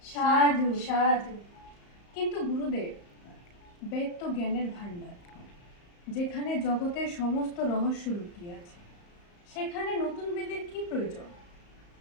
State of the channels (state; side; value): late; right; 34 ms